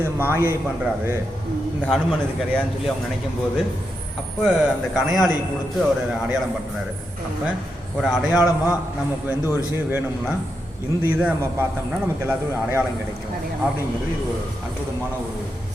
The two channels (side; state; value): both; normal; correlation 0.85